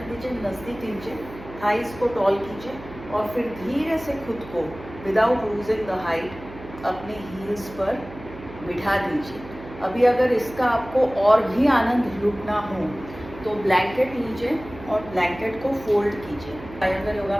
दीजिए, नज़दीक लीजिए, थाइस को टॉल कीजिए और फिर धीरे से खुद को विदाउट लूजिंग द हाइट अपने हील्स पर बिठा दीजिए। अभी अगर इसका आपको और भी आनंद लूटना हो तो ब्लैंकेट लीजिए और ब्लैंकेट को फोल्ड कीजिए। आयंगर योगा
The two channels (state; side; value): noise; right; hum, 15 dB below the sound